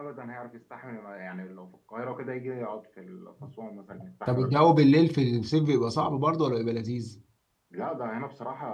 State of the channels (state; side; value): identical; both; correlation 1.00